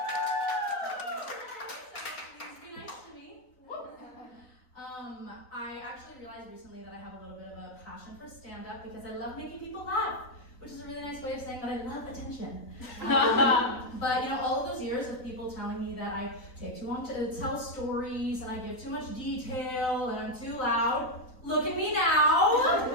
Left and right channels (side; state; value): right; late; 3.9 ms